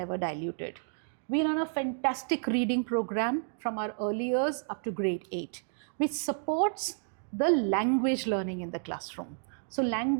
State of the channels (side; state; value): left; silent; digital silence